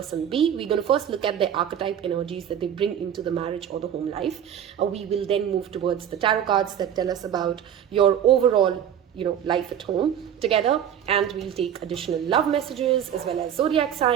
B. We're going to first look at the archetype energies that they bring into the marriage or the home life. We will then move towards the tarot cards that tell us about your overall life at home together, and we'll take additional love messages as well as zodiac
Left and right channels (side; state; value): left; quieter; 9.4 dB